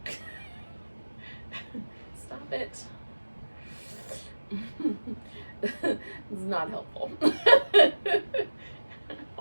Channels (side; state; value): both; inverted; correlation -1.00